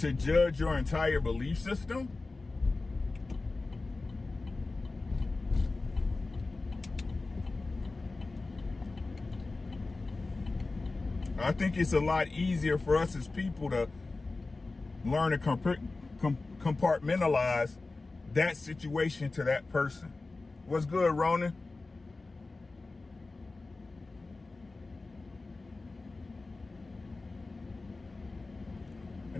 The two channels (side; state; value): right; quieter; 3.5 dB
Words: judge your entire belief system, I think it's a lot easier for us as people to learn to compartmentalize that situation to that person. What's good, Ronan?